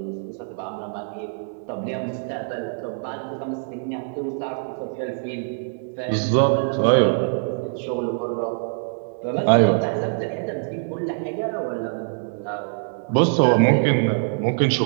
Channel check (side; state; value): left; silent; 63 dB below the other